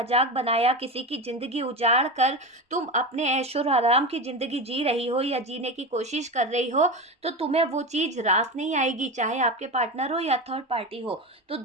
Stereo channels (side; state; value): both; normal; correlation 0.22